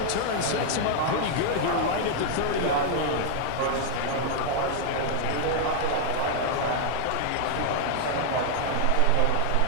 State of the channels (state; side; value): different; both; correlation 0.00